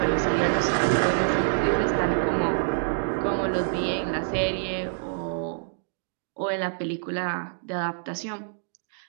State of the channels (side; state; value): left; silent; digital silence